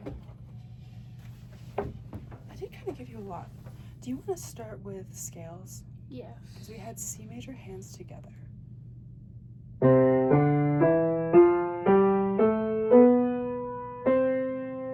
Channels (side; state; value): both; identical; correlation 1.00